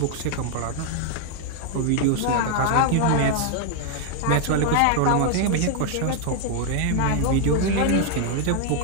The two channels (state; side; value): different; both; correlation 0.00